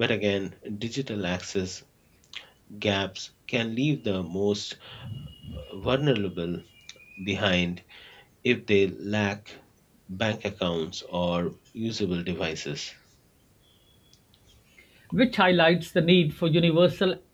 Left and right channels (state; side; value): identical; both; correlation 1.00